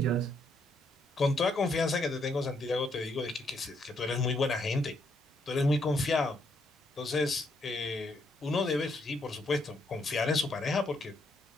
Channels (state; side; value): normal; both; correlation 0.75